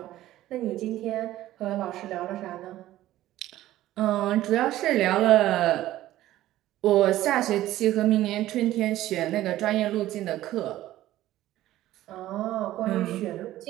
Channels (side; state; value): left; quieter; 14.6 dB